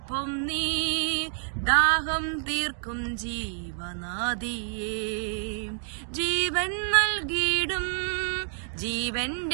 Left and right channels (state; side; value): silent; left; digital silence